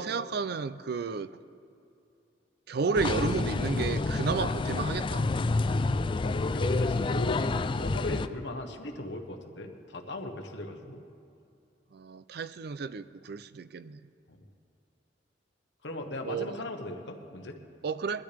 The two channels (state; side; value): normal; both; correlation 0.50